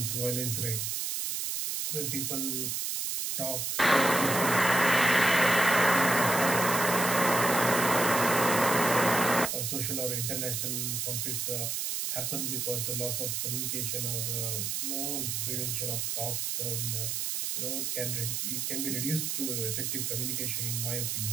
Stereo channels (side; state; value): right; noise; hiss, 1 dB below the sound